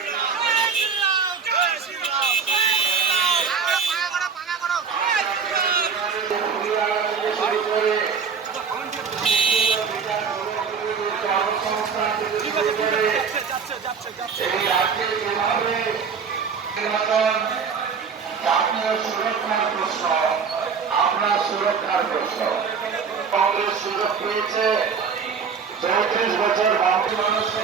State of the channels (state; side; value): quieter; left; 6.0 dB